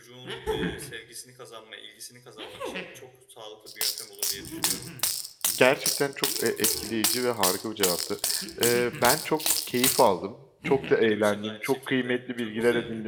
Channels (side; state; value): both; identical; correlation 1.00